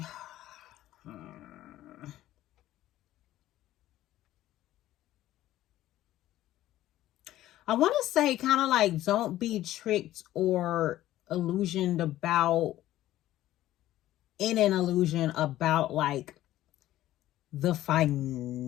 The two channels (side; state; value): right; quieter; 14.3 dB